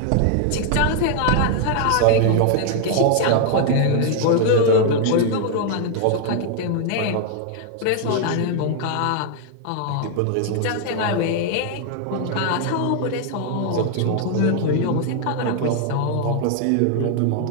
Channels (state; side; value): different; both; correlation 0.00